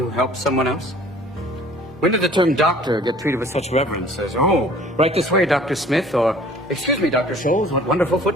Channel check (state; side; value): normal; both; correlation 0.51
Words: helps someone else? When did the term doctor get treated with such reverence as, oh, right this way, Dr. Smith, or, excuse me, Dr. Scholes, what wonderful